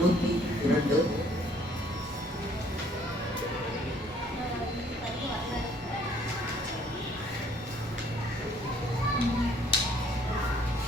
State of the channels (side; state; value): both; normal; correlation 0.61